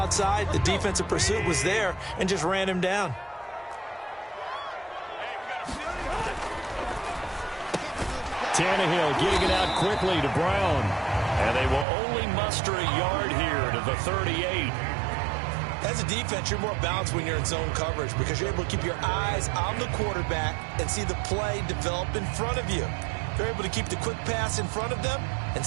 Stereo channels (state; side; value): drops out; left; at 11.9 s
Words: the defensive pursuit was there and just ran him down. Tannehill getting it out quickly to Brown. And they will only muster a yard here to the 38. As a defense, you're more balanced when you're in zone coverage because you're able to keep your eyes on the quarterback and see the play develop in front of you. You're able to keep the quick pass in front of them and